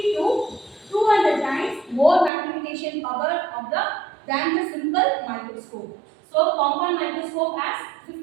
to 200 times more magnification power of than the simple microscope. So compound microscope has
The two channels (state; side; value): drops out; left; at 2.3 s